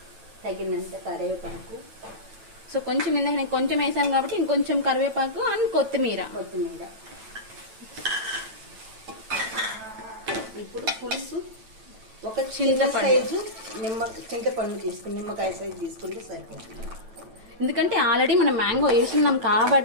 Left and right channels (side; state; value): left; late; 9.0 ms